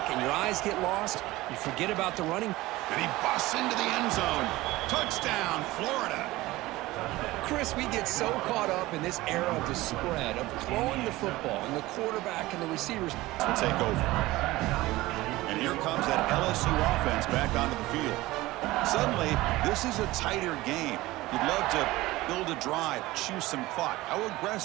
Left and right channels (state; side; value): quieter; left; 18.7 dB